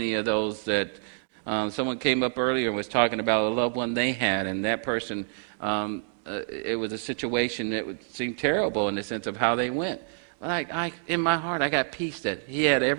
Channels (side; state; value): left; silent; digital silence